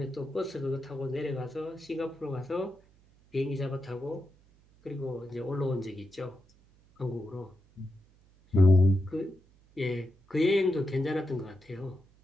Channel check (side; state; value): right; noise; hum, 30 dB below the sound